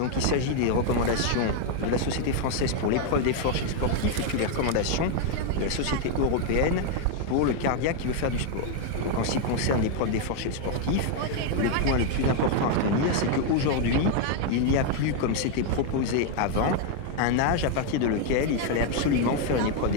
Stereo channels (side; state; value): both; different; correlation 0.00